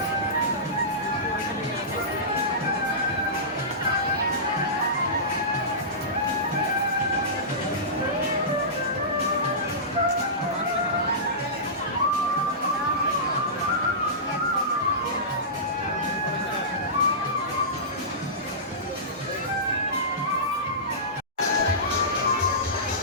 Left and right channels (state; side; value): normal; both; correlation -0.19